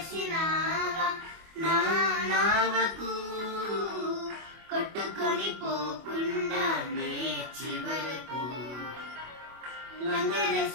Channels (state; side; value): late; left; 24 ms